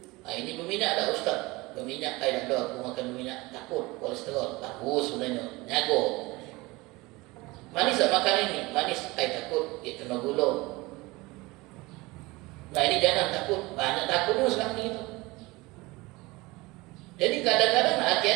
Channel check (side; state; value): left; quieter; 22.3 dB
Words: Nah, ini berminyak tak Ustaz? Berminyak, tak ada aku makan berminyak, takut kolesterol, bagus sebenarnya, nyago. Manis tak makan ini? Manis, takut, dia kena gula. Nah ini jangan takut, banyak takut sekarang ni kita. Jadi kadang-kadang